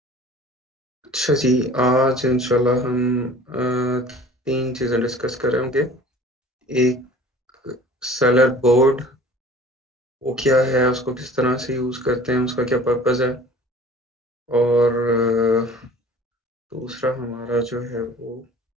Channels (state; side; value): normal; both; correlation 0.47